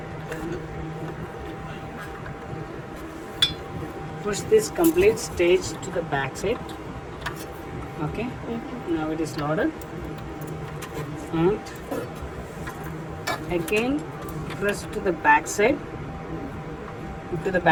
Push this complete stage to the back side. Okay. Now it is loaded. And again press to the back side,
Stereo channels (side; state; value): both; identical; correlation 1.00